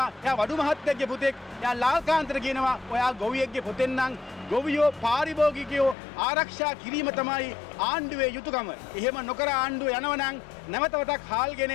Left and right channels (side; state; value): right; drops out; at 6.0 s